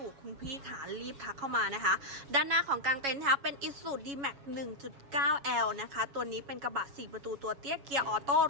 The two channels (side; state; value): left; late; 7.2 ms